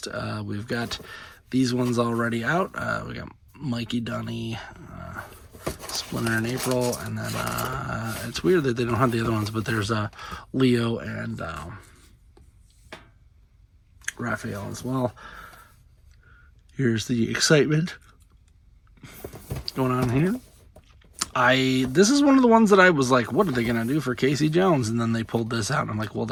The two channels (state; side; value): identical; both; correlation 1.00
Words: We've got these ones already out. We got Mikey, Dunny, Splinter in April, and then it's weird that they don't have the other ones, but there's Leo and Raphael as well. Here's the excitement going on here. This is one of the ones that I was like, what are they going to do for Casey Jones? And then they pulled this out, and I'm like, well,